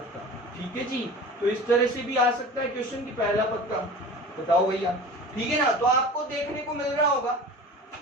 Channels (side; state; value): both; normal; correlation 0.38